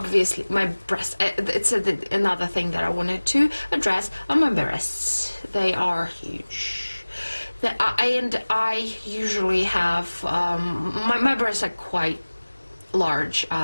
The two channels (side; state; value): both; inverted; correlation -1.00